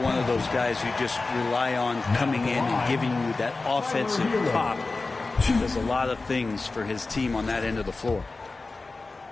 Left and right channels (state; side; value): quieter; right; 3.6 dB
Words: of those guys who just rely on coming in and giving you that offensive pop. Does a lot of things for his team on that end of the floor.